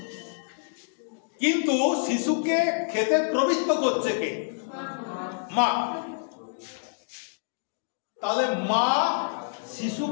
কিন্তু শিশুকে খেতে প্রবৃত্ত করছে কে? মা। তাহলে মা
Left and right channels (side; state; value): right; silent; digital silence